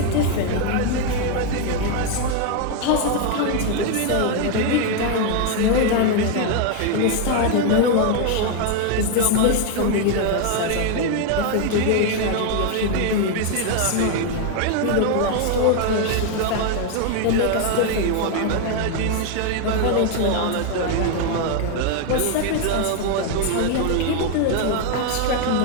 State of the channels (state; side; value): different; both; correlation 0.01